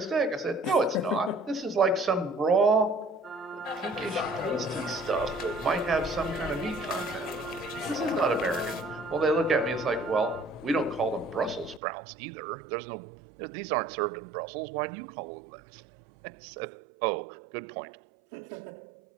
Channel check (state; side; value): drops out; left; at 11.8 s